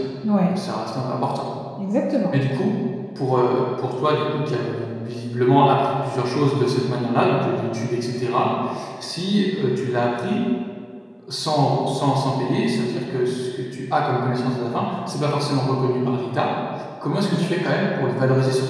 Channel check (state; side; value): identical; both; correlation 1.00